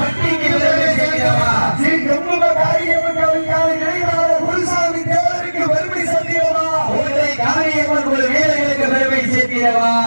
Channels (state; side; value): inverted; both; correlation -1.00